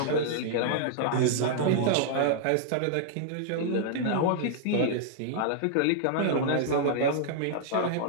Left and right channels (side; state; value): both; different; correlation -0.01